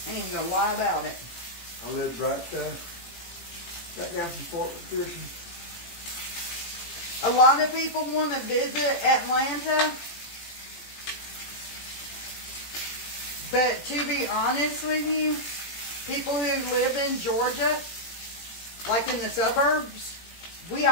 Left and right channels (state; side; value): late; right; 18 ms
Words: I ain't gonna lie about it. I lived right down from Fort McPherson. A lot of people want to visit Atlanta, but to be honest with you, people who live in Georgia, like in the suburbs, we